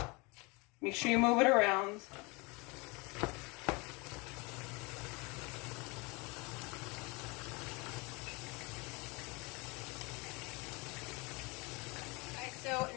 Make sure you move it around. So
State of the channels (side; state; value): right; quieter; 27.4 dB